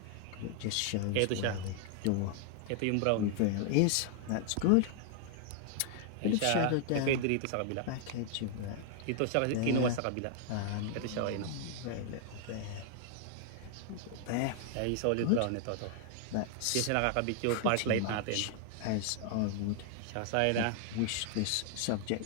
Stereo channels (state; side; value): different; both; correlation 0.00